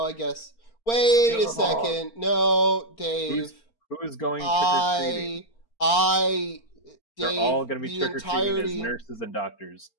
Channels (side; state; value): right; late; 4.4 ms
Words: I guess. Wait a Ugh. second. No, Dave. who's going trick or treating? They're all Dave, gonna be the trick or treating as entirety, nurses and doctors.